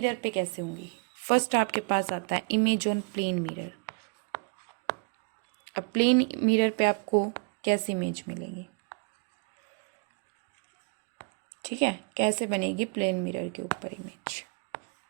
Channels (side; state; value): left; quieter; 33.9 dB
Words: पे कैसे होंगी। फर्स्ट आपके पास आता है इमेज ऑन प्लेन मिरर। अब प्लेन मिरर पे आपको कैसी इमेज मिलेगी, ठीक है, कैसे बनेगी प्लेन मिरर के ऊपर इमेज।